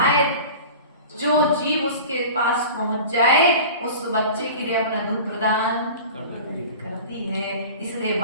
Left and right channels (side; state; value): both; inverted; correlation -0.37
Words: जो जीव उसके पास पहुंच जाए उस बच्चे के लिए अपना दूध प्रदान करती है। इसलिए